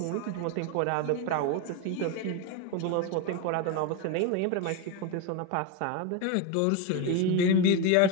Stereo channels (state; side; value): different; both; correlation 0.02